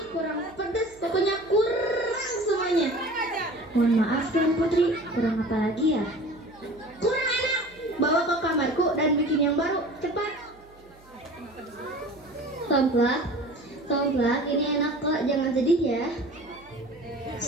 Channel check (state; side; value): noise; right; hum, 26 dB below the sound